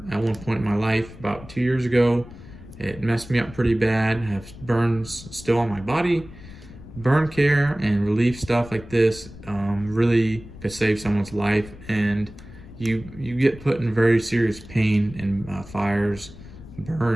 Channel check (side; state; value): left; noise; rumble, 17 dB below the sound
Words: at one point in my life about 2 years ago. It messed me up pretty bad. I have burns still on my body. Burn care and relief stuff like this really could save someone's life, and you get put in very serious pain in fires,